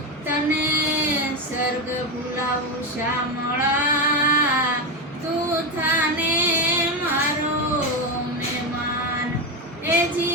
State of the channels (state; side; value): normal; both; correlation 0.12